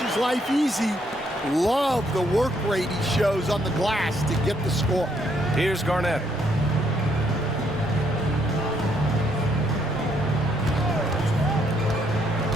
life easy. Love the work rate he shows on the glass to get the score. Here's Garnett.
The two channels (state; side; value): normal; both; correlation 0.72